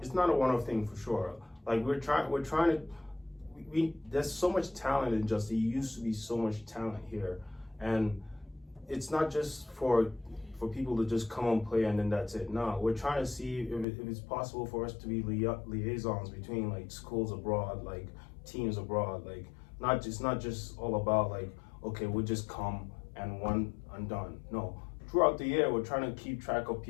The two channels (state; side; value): drops out; right; at 13.9 s